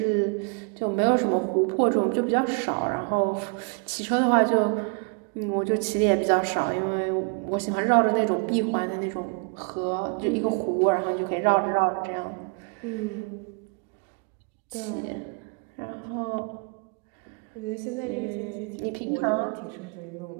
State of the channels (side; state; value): left; quieter; 35.6 dB